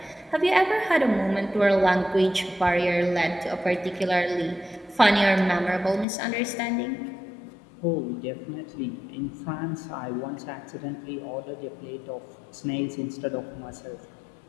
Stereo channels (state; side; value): drops out; right; at 6.1 s